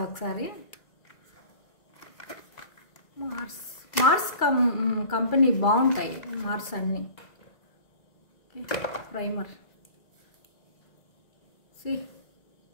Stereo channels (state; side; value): late; right; 2.3 ms